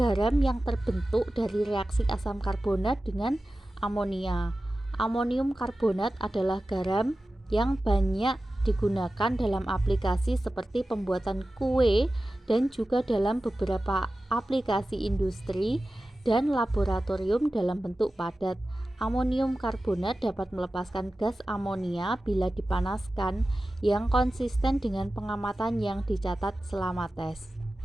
yang terbentuk dari reaksi asam karbonat dengan amonia. Amonium karbonat adalah garam yang banyak digunakan dalam aplikasi seperti pembuatan kue dan juga dalam beberapa aplikasi industri dan laboratorium dalam bentuk padat. Amonium karbonat dapat melepaskan gas amonia bila dipanaskan yang konsisten dengan pengamatan yang dicatat selama tes.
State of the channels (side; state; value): both; normal; correlation 0.95